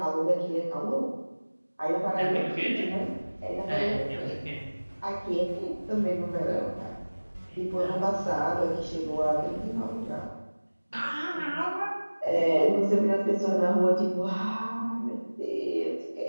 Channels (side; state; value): both; inverted; correlation -1.00